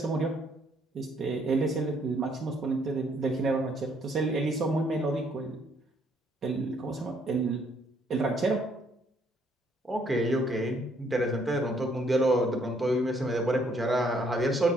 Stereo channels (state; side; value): normal; both; correlation 0.67